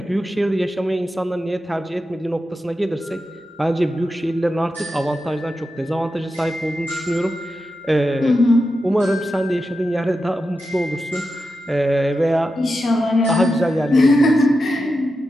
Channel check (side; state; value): both; normal; correlation 0.89